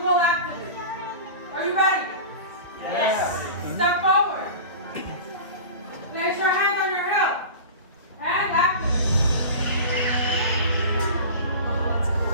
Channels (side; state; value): both; inverted; correlation -0.33